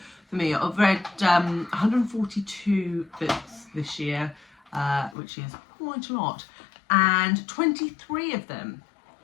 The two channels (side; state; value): right; drops out; at 5.2 s